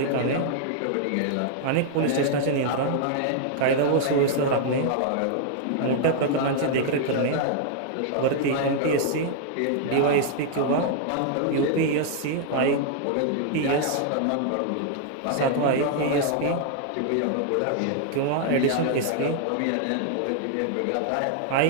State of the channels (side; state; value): both; different; correlation 0.00